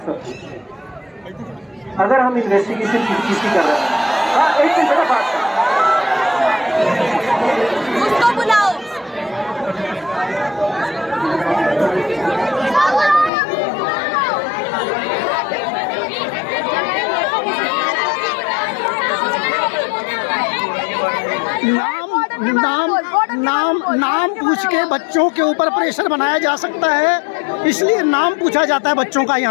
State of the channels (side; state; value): right; drops out; at 13.3 s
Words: सबकी। अगर हम इन्वेस्टिगेशन किसी कर रहे हैं, हाँ एक मिनट बेटा बात कर, उसको बुलाओ। नाम पूछ के बच्चों के ऊपर प्रेशर बनाया जा सकता है, इसलिए नाम पूछा जाता है बच्चों का।